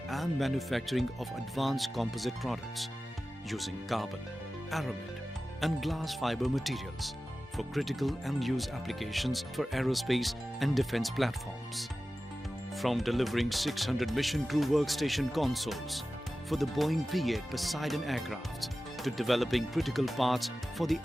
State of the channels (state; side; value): normal; both; correlation 0.95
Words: and manufacturing of advanced composite products using carbon, aramid and glass fiber materials for critical and use applications for aerospace and defense platforms. From delivering 600 mission crew workstation consoles for the Boeing P-8 Poseidon aircraft to developing critical parts for the